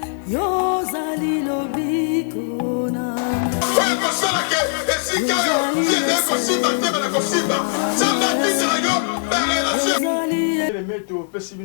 Yozali lobiko nanga oyo kosalaka esika yo tiende kosimba tebe na kosimba nzambe atindela yo barelation meto opesi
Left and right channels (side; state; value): right; silent; digital silence